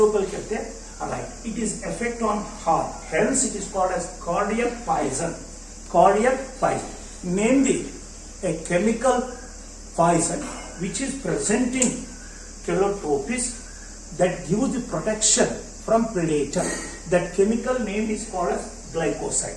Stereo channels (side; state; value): both; identical; correlation 1.00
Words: లోపలికి వెళ్తే it is effect on heart, hence it is called as cardiac poison. Namely, a chemical poison which is present in Calotropis that gives the protection from predator. That chemical name is called as